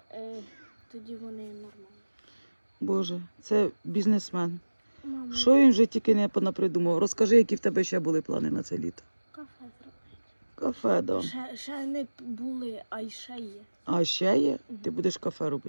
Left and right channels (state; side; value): inverted; both; correlation -1.00